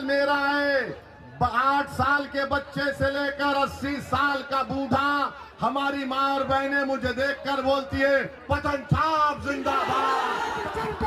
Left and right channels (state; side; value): identical; both; correlation 1.00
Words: मेरा है। 8 साल के बच्चे से लेकर 80 साल का बूढ़ा, हमारी माँ और बहनें मुझे देखकर बोलती है पतन छाप जिंदाबाद।